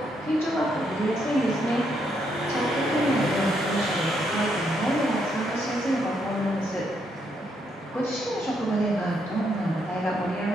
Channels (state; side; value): normal; both; correlation 0.76